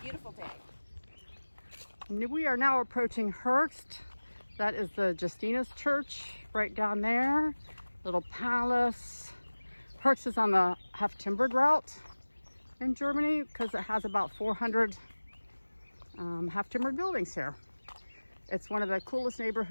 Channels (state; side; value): inverted; both; correlation -1.00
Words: day. We are now approaching Höchst. That is the Justinus Church right down there. Little palace. Höchst is on the half-timbered route in Germany because it has about 400 half-timbered buildings here. It's one of the coolest